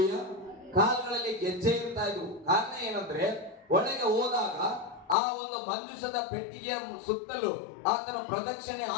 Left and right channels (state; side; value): drops out; right; at 5.2 s